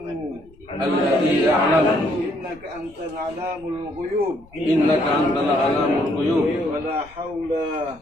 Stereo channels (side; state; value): left; noise; rumble, 26 dB below the sound